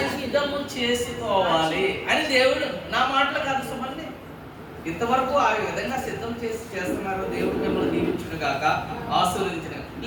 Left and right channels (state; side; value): identical; both; correlation 1.00